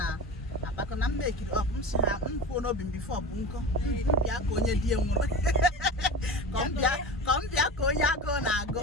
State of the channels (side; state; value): both; normal; correlation 0.30